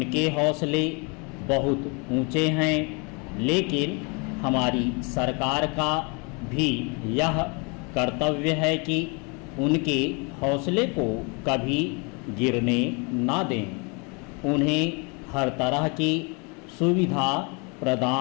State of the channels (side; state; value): right; quieter; 31.9 dB